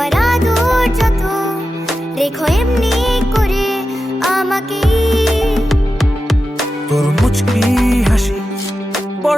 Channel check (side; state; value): both; normal; correlation 0.91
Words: দেখো এমনি করে আমাকে। তোর মুচকি হাসি